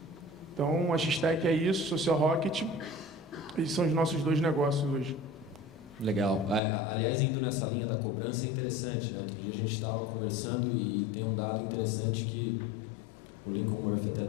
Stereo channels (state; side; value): drops out; right; at 6.6 s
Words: Então, a X-Tech é isso, Social Rocket, esses são os nossos 2 negócios hoje. Legal. Aliás, indo nessa linha da cobrança é interessante, né? Outro dia a gente estava conversando e tem um dado interessante que o Lincoln Murphy até